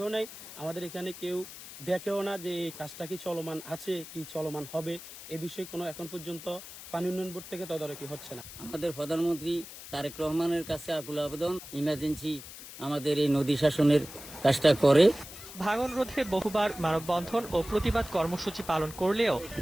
নাই। আমাদের এখানে কেউ দেখেও না যে এই কাজটা কি চলমান আছে, কি চলমান হবে, এ বিষয়ে কোনো এখন পর্যন্ত পানি উন্নয়ন বোর্ড থেকে তদারকি হচ্ছে না। আমাদের প্রধানমন্ত্রী তারেক রহমানের কাছে আকুল আবেদন, ইমার্জেন্সি আমাদের এই নদী শাসনের কাজটা করে। ভাঙন রোধে বহুবার মানববন্ধন ও প্রতিবাদ কর্মসূচি পালন করলেও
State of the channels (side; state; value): left; noise; hiss, 14 dB below the sound